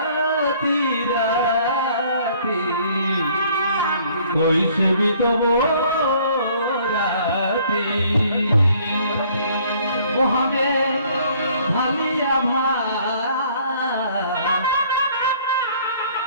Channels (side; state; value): both; inverted; correlation -0.59